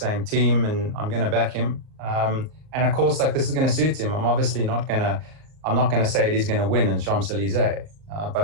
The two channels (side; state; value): left; late; 38 ms